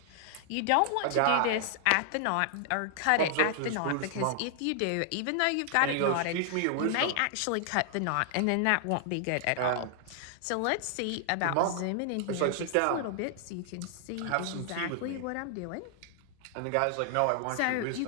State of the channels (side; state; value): both; different; correlation 0.00